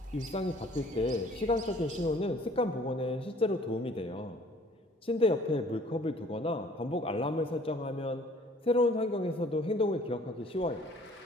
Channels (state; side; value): normal; both; correlation 0.55